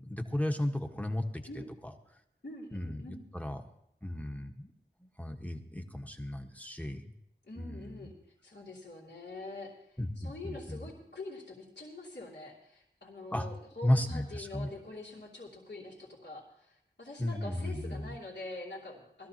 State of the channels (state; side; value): normal; both; correlation 0.92